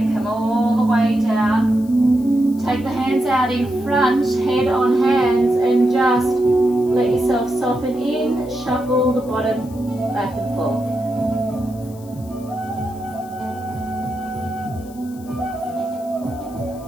come all the way down. Take the hands out in front, head on hands, and just let yourself soften in, shuffle the bottom back and forth.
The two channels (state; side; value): noise; left; hiss, 24 dB below the sound